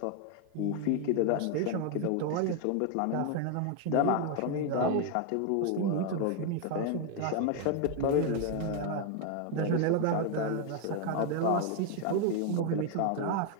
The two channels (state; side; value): different; both; correlation 0.01